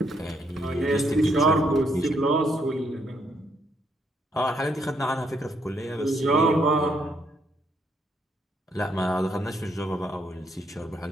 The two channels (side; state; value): both; normal; correlation 0.74